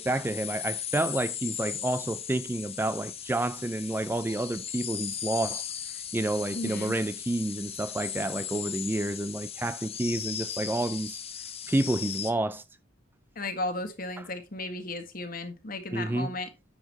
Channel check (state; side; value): normal; both; correlation 0.68